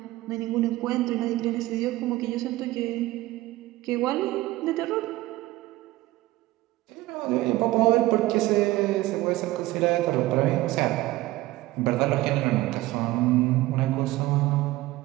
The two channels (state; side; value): quieter; left; 18.0 dB